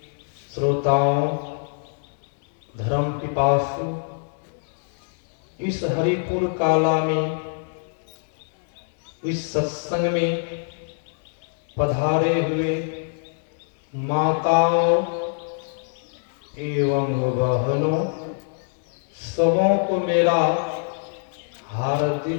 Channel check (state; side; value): silent; right; digital silence